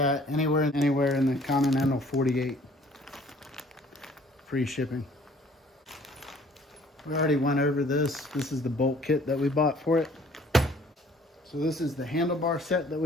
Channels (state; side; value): normal; both; correlation 0.56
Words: anywhere in the continental 48. Free shipping. We already went over this. This is the bolt kit that we bought for it. So this is the handlebar set that